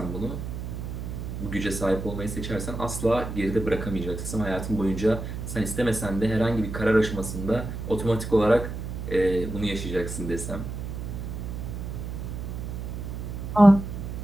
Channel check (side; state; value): right; noise; hum, 6 dB below the sound